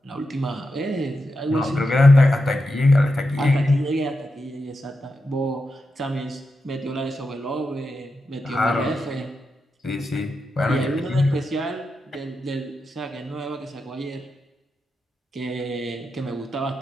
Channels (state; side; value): normal; both; correlation 0.88